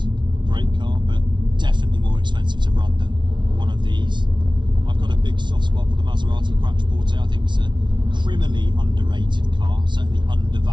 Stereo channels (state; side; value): late; left; 0.23 ms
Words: great car, but definitely more expensive to run than one of these. I've got a big soft spot for the Maserati Quattroporte. I think it's a criminally underrated car, certainly